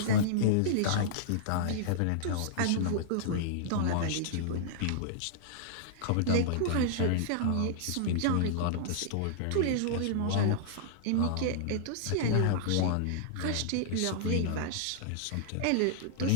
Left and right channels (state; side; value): different; both; correlation -0.02